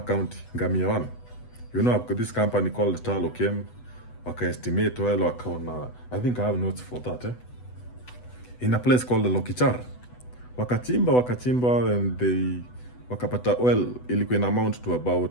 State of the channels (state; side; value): late; right; 8.0 ms